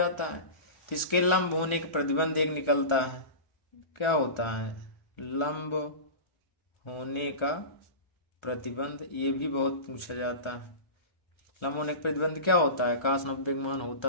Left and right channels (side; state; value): right; late; 1.4 ms